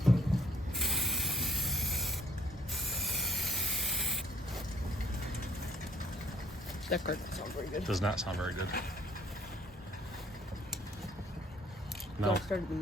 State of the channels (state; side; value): normal; both; correlation 0.63